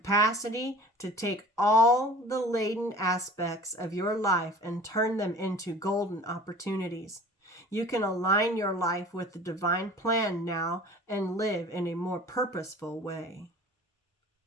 to take all the laden aspects of your life and turn them into golden opportunities. You can align your life with the divine plan now and live in a more purposeful way.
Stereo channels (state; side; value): normal; both; correlation 0.44